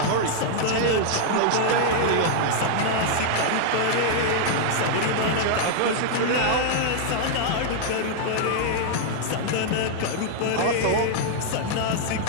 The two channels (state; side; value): different; both; correlation -0.01